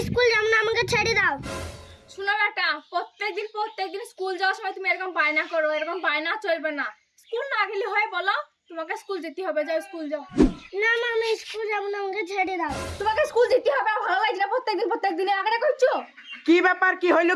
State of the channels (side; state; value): both; identical; correlation 1.00